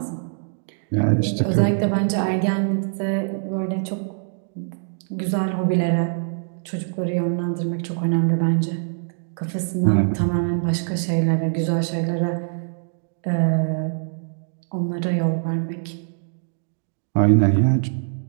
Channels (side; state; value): left; silent; digital silence